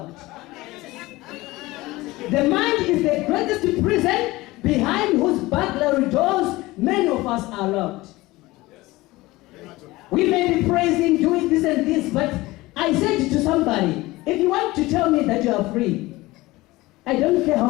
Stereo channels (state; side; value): quieter; right; 19.7 dB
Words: The mind is the greatest prison behind whose burglary doors many of us are locked. We may be praising, doing this and this, but I said to somebody, if you want to tell me that you are free, I don't care how